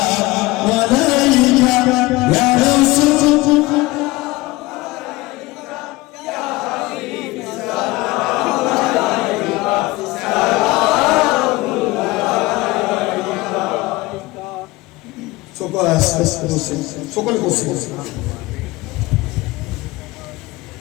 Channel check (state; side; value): quieter; right; 20.7 dB